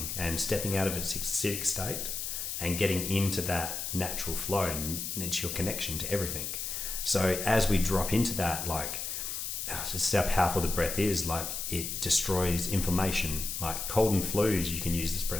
and stepping out of its acidic state and getting into that natural flow. And it's your connection to everything. So as we drop into that, like, just how powerful the breath is, like it destroys inflammation, like cold and flus you can use this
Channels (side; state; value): left; noise; hiss, 4 dB below the sound